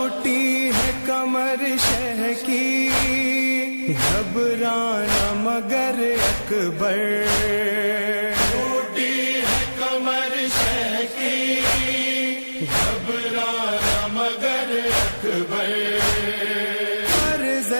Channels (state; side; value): inverted; both; correlation -1.00